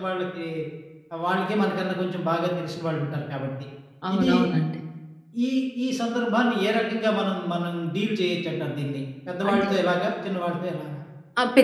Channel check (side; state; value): both; identical; correlation 1.00